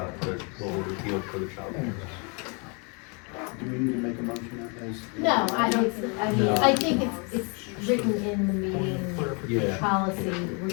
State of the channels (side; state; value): right; quieter; 34.0 dB